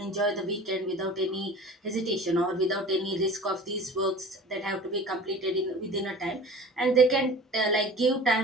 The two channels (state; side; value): normal; both; correlation 0.40